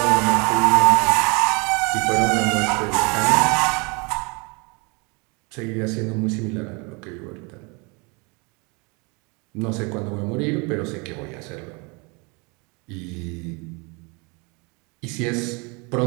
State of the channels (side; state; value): left; quieter; 30.4 dB